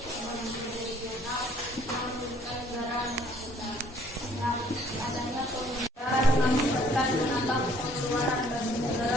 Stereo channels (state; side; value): normal; both; correlation 0.60